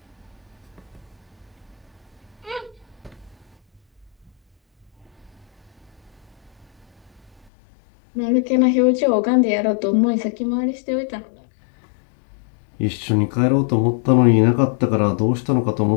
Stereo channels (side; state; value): right; drops out; at 7.5 s